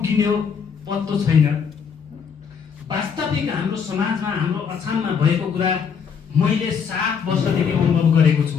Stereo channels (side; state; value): right; quieter; 6.6 dB